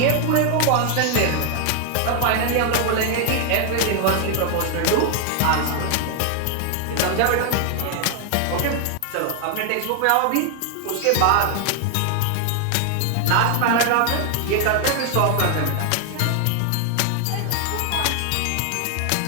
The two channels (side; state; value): both; different; correlation 0.00